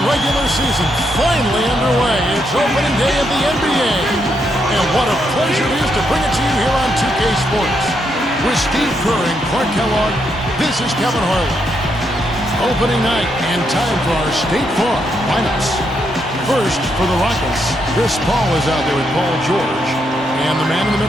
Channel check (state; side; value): normal; both; correlation 0.79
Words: regular season. Finally underway. It's opening day of the NBA. And what a pleasure it is to bring it to you here on 2K Sports. With Steve Kerr and Clark Kellogg, this is Kevin Harlan. Opening night and time for our State Farm lineups. First, for the Rockets, Chris Paul is out there with Paul George. And the man in the